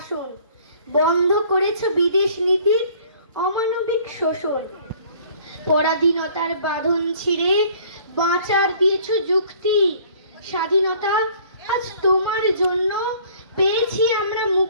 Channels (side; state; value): both; inverted; correlation -0.54